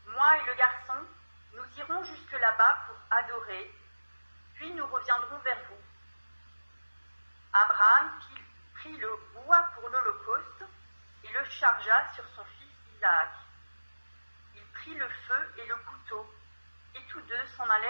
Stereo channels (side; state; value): both; inverted; correlation -1.00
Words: Moi et le garçon, nous irons jusque là-bas pour adorer, puis nous reviendrons vers vous. » Abraham prit le bois pour l'holocauste et le chargea sur son fils Isaac. Il prit le feu et le couteau, et tous 2 s'en